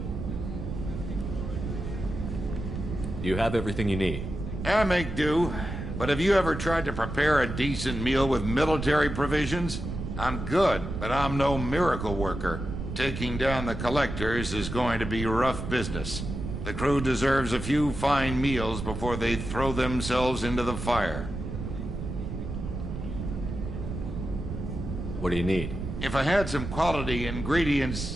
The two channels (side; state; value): right; noise; rumble, 6 dB below the sound